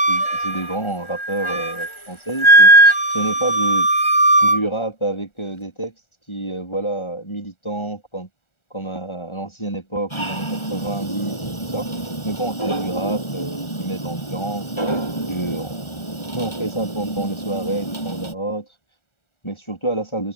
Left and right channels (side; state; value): right; late; 1.4 ms